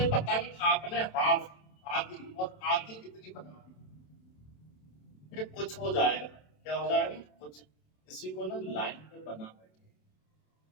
पतंग आपने हाफ आधी और आधी कितनी बना दी, ये कुछ हो जाएगा, क्या हो जाएगा कुछ, इसी को ना लाइन पे बना बैठे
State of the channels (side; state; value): right; late; 27 ms